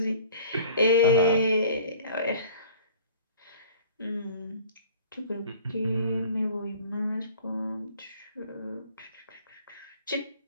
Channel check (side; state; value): both; inverted; correlation -0.46